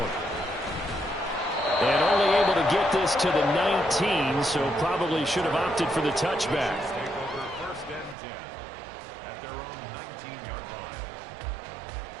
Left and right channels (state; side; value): drops out; left; at 8.2 s